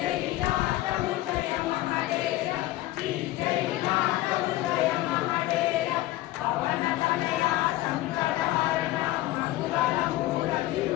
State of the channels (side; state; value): right; quieter; 16.6 dB